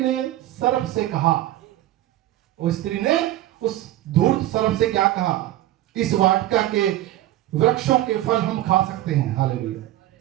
सर्प से कहा, उस स्त्री ने उस धूर्त सर्प से क्या कहा? इस वाटिका के वृक्षों के फल हम खा सकते हैं। हालेलुया।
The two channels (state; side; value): quieter; left; 14.6 dB